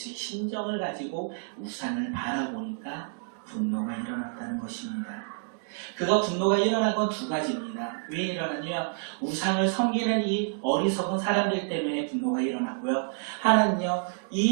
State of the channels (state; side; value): silent; left; 59 dB below the other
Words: 심정을 가지고 우상을 바라보니까 분노가 일어났다는 것입니다. 그가 분노가 일어난 건 두 가지입니다. 왜 일어났냐? 우상을 섬기는 이 어리석은 사람들 때문에 분노가 일어났고요. 하나는요,